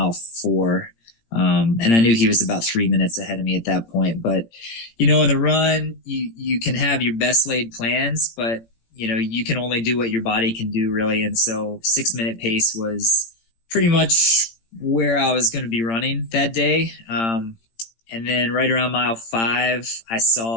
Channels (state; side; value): late; right; 18 ms